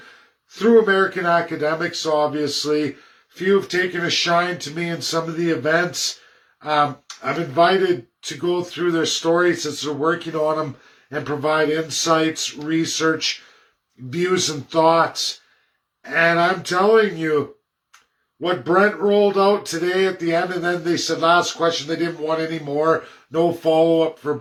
through American academics, obviously. Few have taken a shine to me in some of the events. I'm invited to go through their stories as they're working on them and provide insights, research, views, and thoughts. And I'm telling you, what Brent rolled out today at the end, and then they said last question, they didn't want any more, no follow-up for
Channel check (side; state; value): both; identical; correlation 1.00